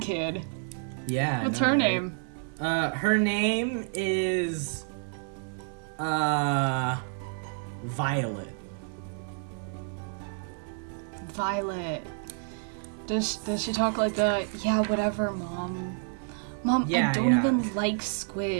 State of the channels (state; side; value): silent; left; 58 dB below the other